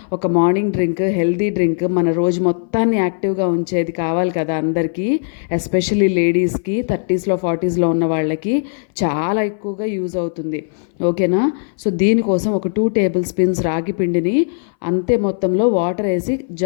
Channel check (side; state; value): right; silent; 62 dB below the other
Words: ఒక మార్నింగ్ డ్రింక్, హెల్తీ డ్రింక్ మన రోజు మొత్తాన్ని యాక్టివ్గా ఉంచేది కావాలి కదా అందరికీ. ఎస్పెషల్లీ లేడీస్కి, 30స్లో 40స్లో ఉన్న వాళ్ళకి చాలా ఎక్కువగా యూజ్ అవుతుంది. ఓకేనా? సో దీనికోసం ఒక 2 టేబుల్ స్పూన్స్ రాగి పిండిని అంతే మొత్తంలో వాటర్ వేసి